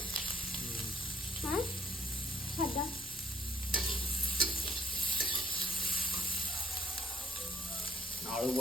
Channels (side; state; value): both; normal; correlation 0.62